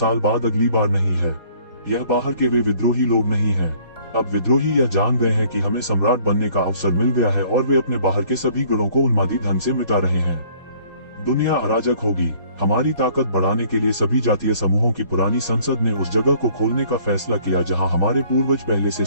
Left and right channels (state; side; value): inverted; both; correlation -0.58